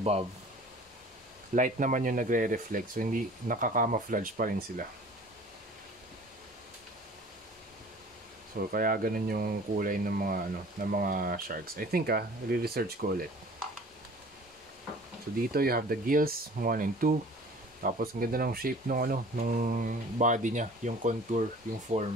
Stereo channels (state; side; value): normal; both; correlation 0.47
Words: light naman yung nagre-reflect, so hindi nakaka-camouflage pa rin sila. So kaya ganun yung kulay ng mga sharks. I think i-research ko ulit. So dito you have the gills 1 and 2. Tapos ang ganda ng shape nung body niya, yung contour, yung